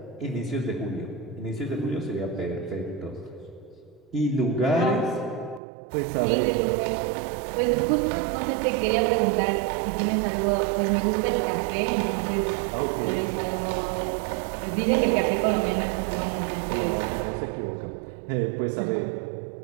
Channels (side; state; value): left; drops out; at 5.6 s